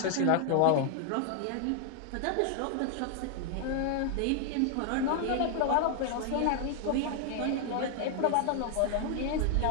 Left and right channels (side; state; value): both; different; correlation 0.00